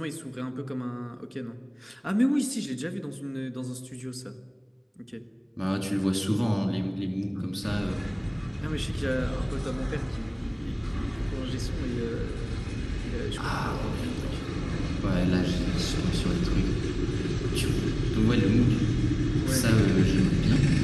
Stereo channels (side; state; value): both; identical; correlation 1.00